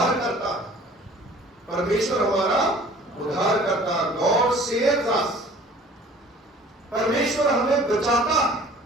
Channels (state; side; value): normal; both; correlation 0.49